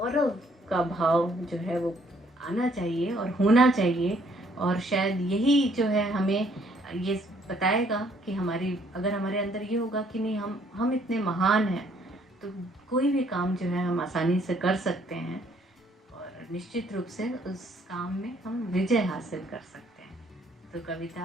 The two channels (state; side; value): normal; both; correlation 0.65